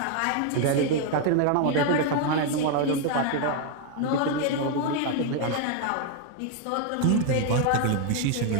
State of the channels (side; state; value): both; different; correlation 0.01